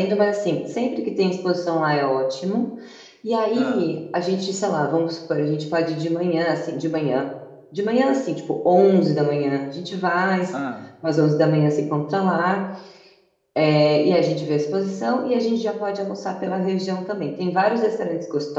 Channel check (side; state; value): both; identical; correlation 1.00